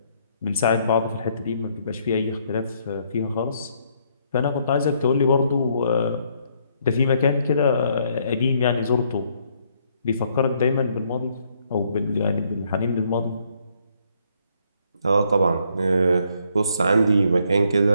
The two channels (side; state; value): both; inverted; correlation -0.70